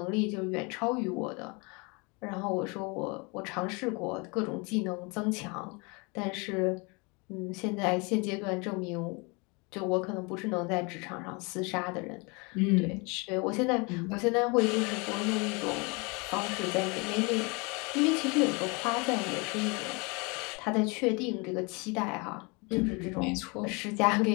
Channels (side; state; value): right; quieter; 29.5 dB